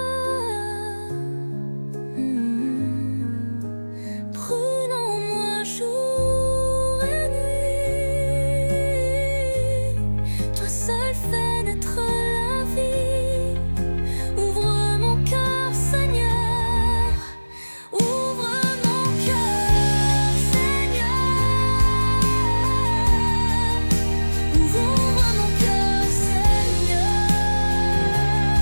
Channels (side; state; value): both; inverted; correlation -1.00